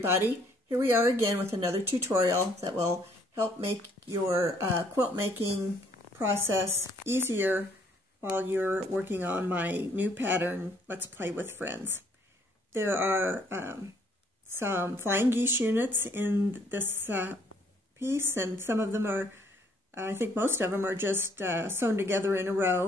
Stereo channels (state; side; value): normal; both; correlation 0.64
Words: here we are again with another tutorial that will help make your quilt making process easier while you're working on my new pattern, Let's Play with Friends. There are some flying geese units in this piece, and some of them are, I think most of them are just sewn together in a